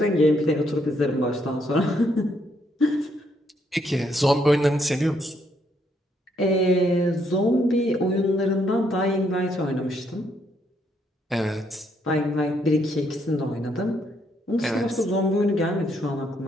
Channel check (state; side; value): normal; both; correlation 0.73